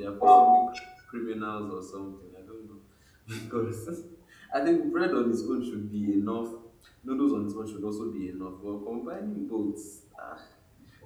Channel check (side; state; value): both; identical; correlation 1.00